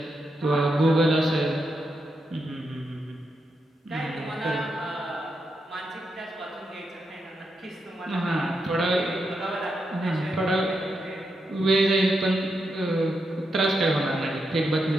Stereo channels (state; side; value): normal; both; correlation 0.84